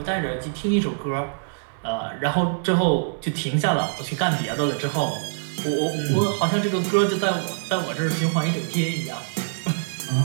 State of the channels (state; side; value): silent; left; 62 dB below the other